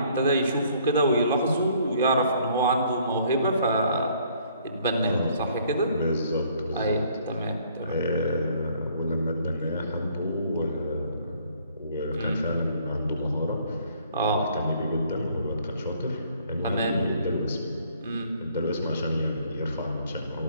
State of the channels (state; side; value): inverted; both; correlation -0.62